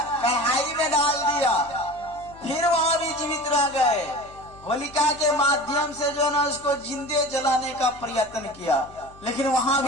कढ़ाई में डाल दिया, फिर वहां भी जीवित रह गए। होलिका के माध्यम से जो ना उसको जिंदे जलाने का प्रयत्न किया, लेकिन वहां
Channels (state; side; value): noise; left; hum, 22 dB below the sound